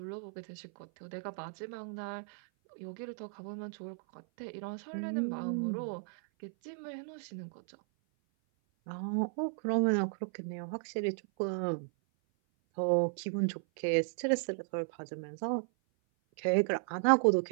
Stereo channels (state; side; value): silent; left; 54 dB below the other